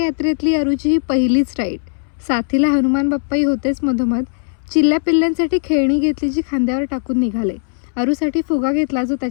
अरूची ही पहिलीच राईड. साथीला हनुमान बाप्पाही होतेच मधोमध. चिल्ल्या पिल्ल्यांसाठी खेळणी घेतली जी खांद्यावर टाकून निघाले. अरूसाठी फुगा घेतला जो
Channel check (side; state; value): right; silent; 67 dB below the other